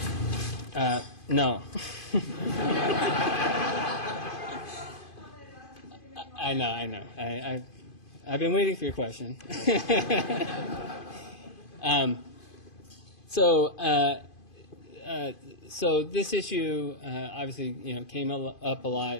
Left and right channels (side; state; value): right; late; 2.5 ms